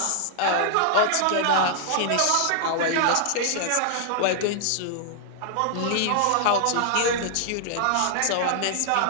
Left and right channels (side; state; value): both; different; correlation 0.00